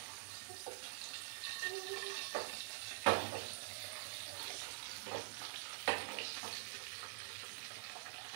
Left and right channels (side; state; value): left; silent; digital silence